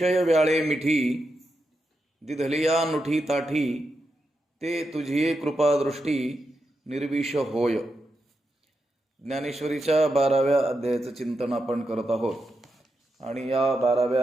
व्याळे मिठी दिधलिया नुठी ताठी ते तुझी कृपादृष्टी निर्विष होय. ज्ञानेश्वरीच्या 12व्या अध्यायाचं चिंतन आपण करत आहोत आणि या 12व्या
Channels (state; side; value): normal; both; correlation 0.86